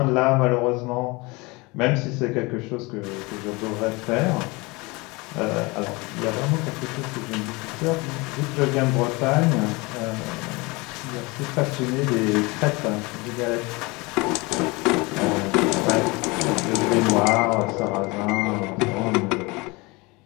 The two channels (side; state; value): right; quieter; 25.3 dB